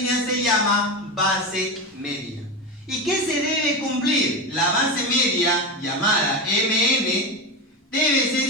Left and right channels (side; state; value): both; normal; correlation 0.19